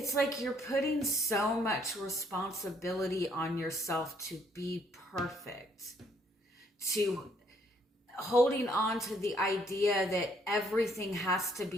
like you're putting so much responsibility on yourself to be perfect, to holding on to the idea that everything has to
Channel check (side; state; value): both; normal; correlation 0.66